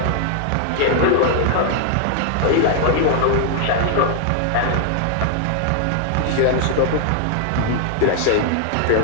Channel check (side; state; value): both; different; correlation 0.00